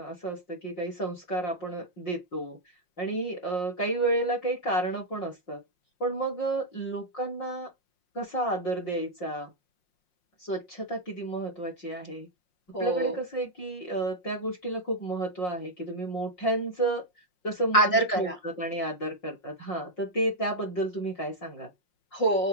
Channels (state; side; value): late; right; 5.6 ms